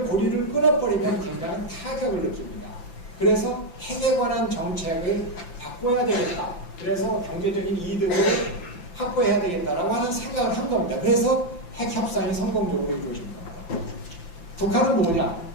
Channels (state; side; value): late; right; 6.0 ms